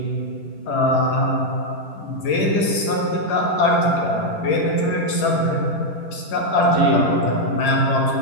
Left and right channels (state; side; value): late; right; 10 ms